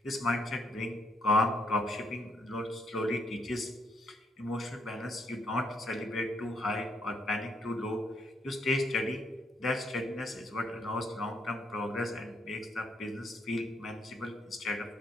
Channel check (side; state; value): both; normal; correlation 0.72